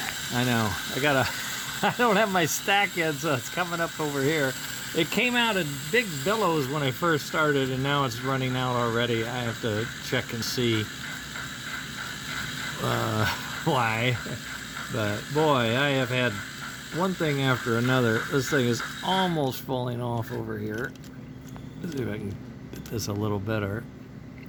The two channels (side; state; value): both; identical; correlation 1.00